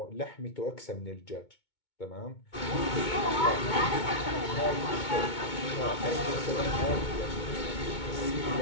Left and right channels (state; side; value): late; right; 2.2 ms